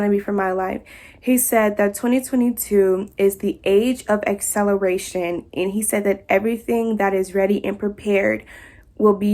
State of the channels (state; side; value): identical; both; correlation 1.00